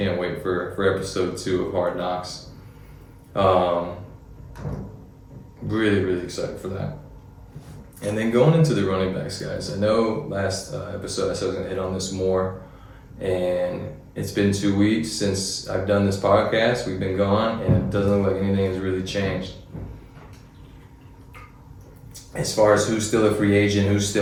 wait for episode 2 of Hard Knocks. Really, really excited for that. And then going into the running backs, guys, I know last episode I said I was going to hit on this more, and it's been 2 weeks since I've done this podcast. We've been gone, and it doesn't look like anything has really changed. As far as who's still a free agent, who's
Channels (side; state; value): both; identical; correlation 1.00